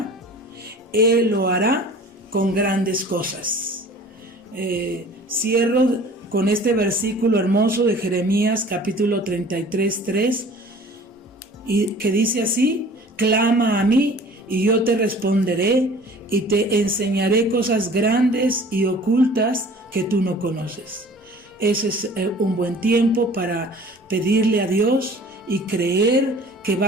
Él lo hará con grandes cosas. Cierro con este versículo hermoso de Jeremías capítulo 33:3, y que dice así: clama a mí y yo te responderé y te enseñaré cosas grandes y ocultas que tú no conoces. Ese es un buen tiempo para pedirle a Dios y creer que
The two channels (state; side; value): normal; both; correlation 0.47